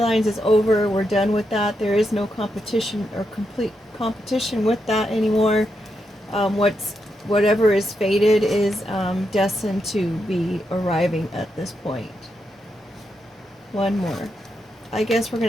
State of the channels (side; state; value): both; normal; correlation 0.83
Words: is over. We're done with that. There is no competition or complete competition with that anymore. Whatever is fated is destined to be arriving at this point. One more. I guess we're